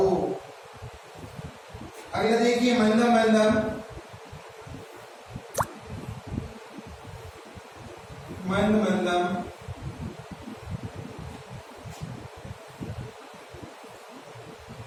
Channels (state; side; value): identical; both; correlation 1.00